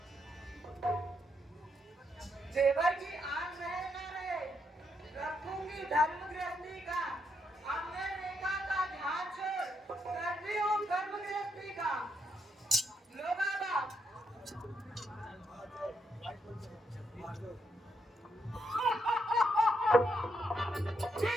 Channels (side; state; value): both; normal; correlation 0.79